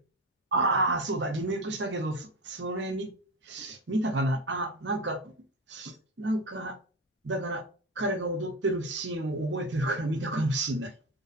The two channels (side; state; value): both; normal; correlation 0.23